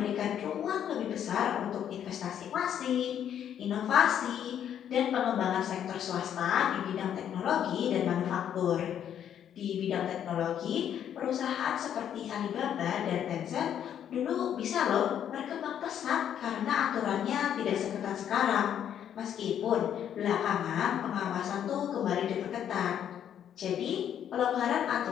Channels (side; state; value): right; quieter; 9.6 dB